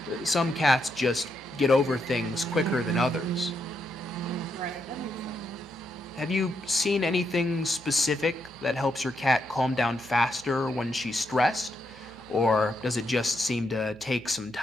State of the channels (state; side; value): noise; right; hum, 24 dB below the sound